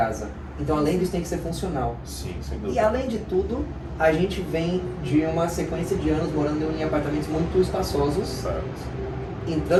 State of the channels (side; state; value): both; identical; correlation 1.00